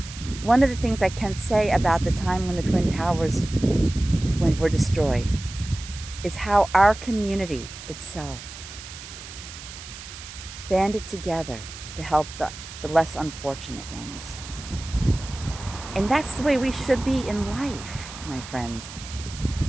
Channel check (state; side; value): noise; right; hiss, 13 dB below the sound